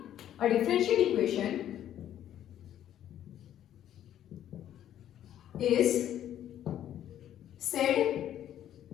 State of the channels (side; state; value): right; quieter; 11.1 dB